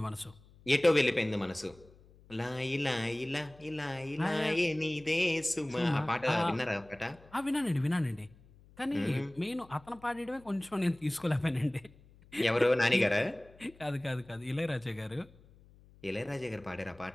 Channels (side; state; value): left; noise; hum, 25 dB below the sound